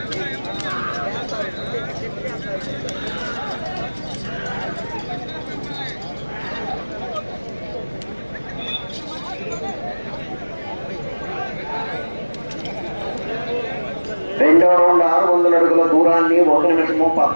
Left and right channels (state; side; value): inverted; both; correlation -1.00